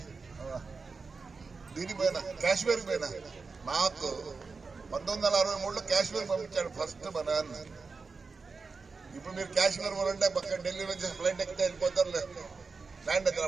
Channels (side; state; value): left; quieter; 4.5 dB